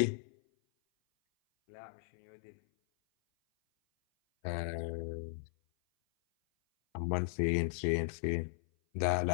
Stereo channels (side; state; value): right; silent; 54 dB below the other